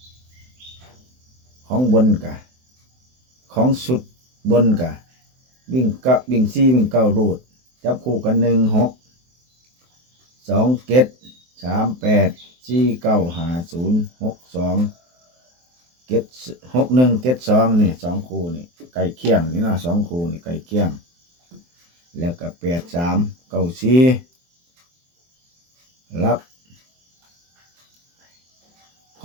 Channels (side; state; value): left; late; 23 ms